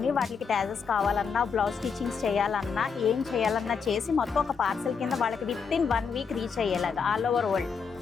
వాటికి ట్యాజెస్ కావాలన్నా, బ్లౌజ్ స్టిచ్చింగ్స్ చేయాలన్నా, ఏం చేయాలన్నా చేసి మొత్తం ఒక పార్సల్ కింద వాళ్ళకి విత్ ఇన్ 1 వీక్ రీచ్ అయ్యేలాగా ఆల్ ఓవర్ వరల్డ్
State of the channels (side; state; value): right; quieter; 5.9 dB